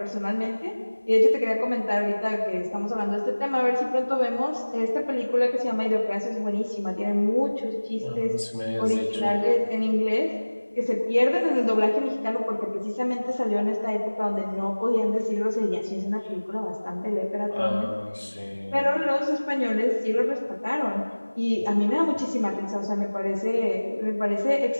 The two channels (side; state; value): both; inverted; correlation -1.00